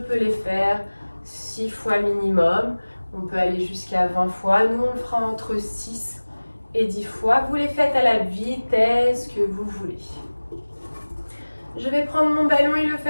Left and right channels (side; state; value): both; inverted; correlation -1.00